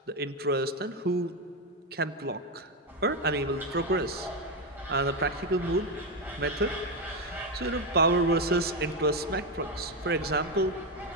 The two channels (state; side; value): normal; both; correlation 0.09